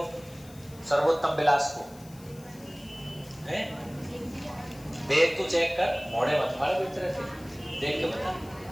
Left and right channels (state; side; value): noise; left; hiss, 22 dB below the sound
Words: सर्वोत्तम विलास को है। देख तू चेक कर, मोड़े मत मारे बेच रहे थे, देख के बता।